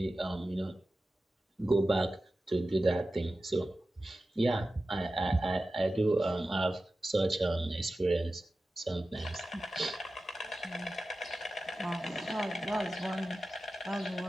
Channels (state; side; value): normal; both; correlation 0.94